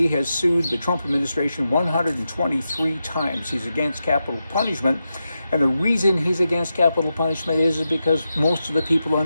has sued the Trump administration 123 times. He's against capital punishment. And the reason he's against capital punishment is because most of the people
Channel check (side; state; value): both; inverted; correlation -0.89